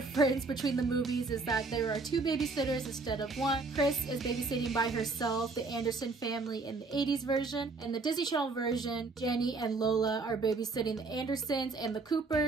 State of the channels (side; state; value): left; quieter; 3.8 dB